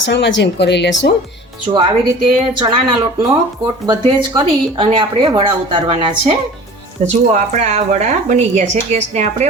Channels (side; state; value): both; normal; correlation 0.42